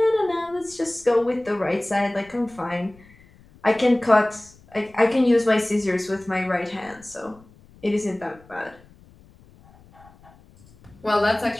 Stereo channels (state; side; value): noise; left; rumble, 26 dB below the sound